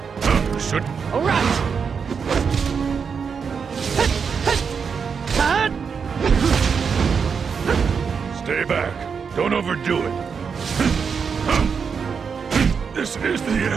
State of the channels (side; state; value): left; quieter; 6.1 dB